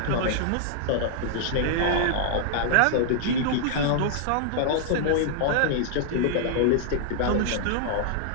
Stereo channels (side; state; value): both; different; correlation -0.01